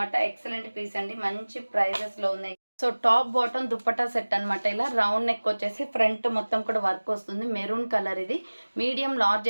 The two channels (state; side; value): inverted; both; correlation -1.00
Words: ఎక్సలెంట్ పీస్ అండి, మంచి ప్రైజెస్ లో ఉన్నాయి. So top bottom dupatta set అనమాట. ఇలా రౌండ్ నెక్ వచ్చేసి ఫ్రంట్ మొత్తం కూడా వర్క్ వస్తుంది, మెరూన్ కలర్. ఇది medium large